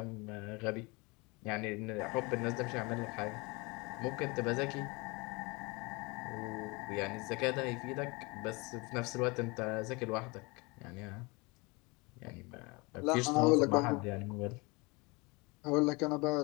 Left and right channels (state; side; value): quieter; right; 27.0 dB